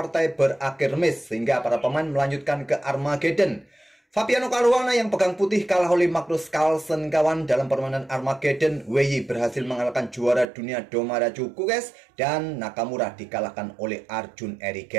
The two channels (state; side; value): drops out; left; at 10.5 s